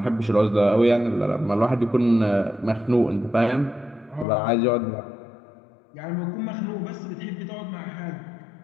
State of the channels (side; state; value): right; drops out; at 4.2 s